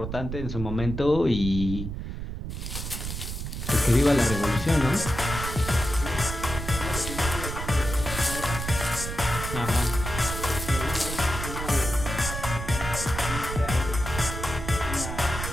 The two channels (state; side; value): noise; right; rumble, 6 dB below the sound